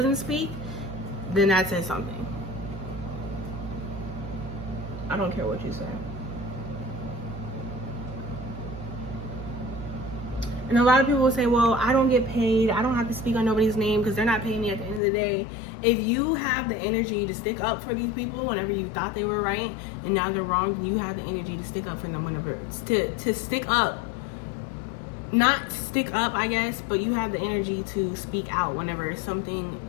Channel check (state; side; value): drops out; right; at 15.0 s